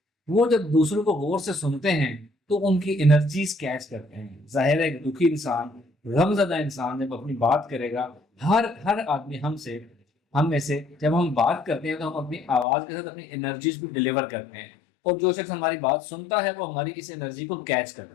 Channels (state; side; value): drops out; right; at 12.7 s